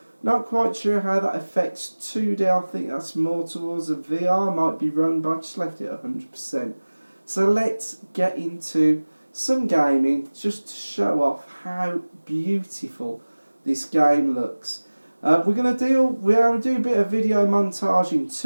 not quite sure how that affects 2D. I think that's more towards a VR. Might be wrong, but I just left it at 100%. So let's get into some gaming, just to show off how beautiful this game looks. We're going to do a bit of video montage in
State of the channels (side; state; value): both; inverted; correlation -1.00